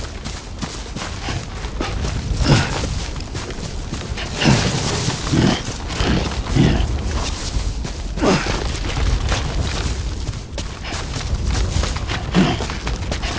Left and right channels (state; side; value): identical; both; correlation 1.00